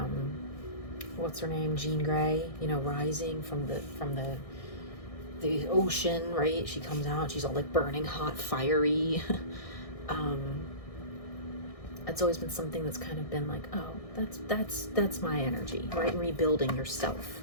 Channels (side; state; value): right; late; 1.6 ms